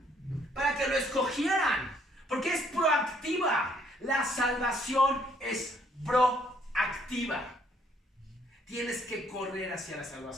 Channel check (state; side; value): normal; both; correlation 0.66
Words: para que lo escogieran. Porque es proactiva. La salvación es proactiva. Tienes que correr hacia la